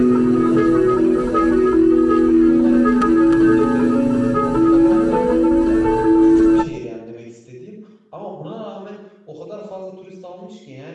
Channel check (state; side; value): identical; both; correlation 1.00